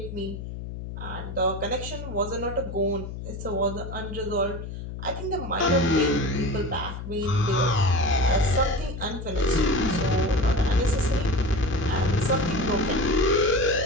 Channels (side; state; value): left; noise; hum, 8 dB below the sound